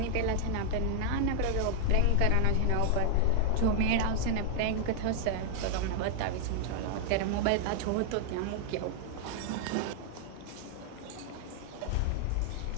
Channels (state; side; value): different; both; correlation -0.01